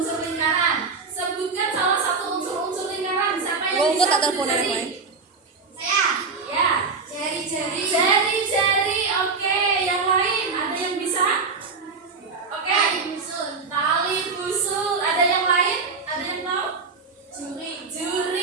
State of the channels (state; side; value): quieter; left; 4.6 dB